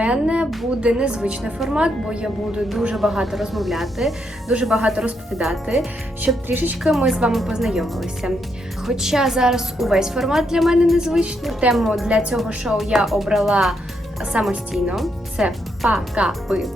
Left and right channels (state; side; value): normal; both; correlation 0.78